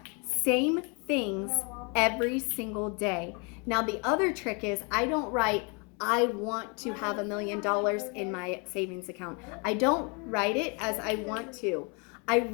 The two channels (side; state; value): right; quieter; 33.4 dB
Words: same things every single day. Now the other trick is I don't write I want to have $1 million in my savings account. I don't write it as I want to. I